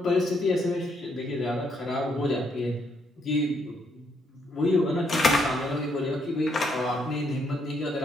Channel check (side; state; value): both; normal; correlation 0.74